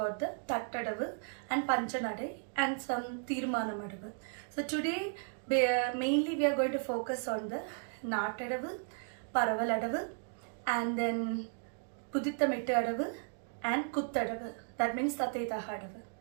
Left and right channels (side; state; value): left; silent; 54 dB below the other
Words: the Tattadavu and Panchanadai and some Tirmanamadavu. So today mainly we are going to focus on the Nattadavu, Paravaladavu and then Pudithamittu Adavu and Kuttadavu. That means Tathetahadavu.